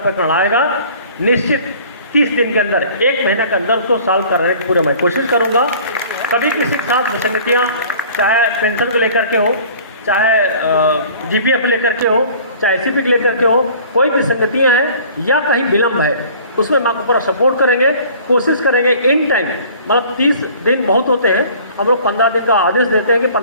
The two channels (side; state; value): both; inverted; correlation -0.49